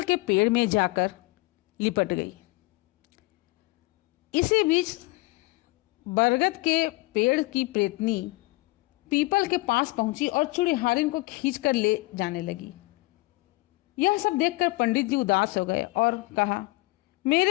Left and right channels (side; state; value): right; quieter; 22.6 dB